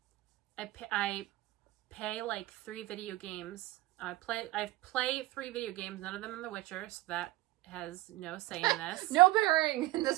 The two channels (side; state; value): left; quieter; 19.0 dB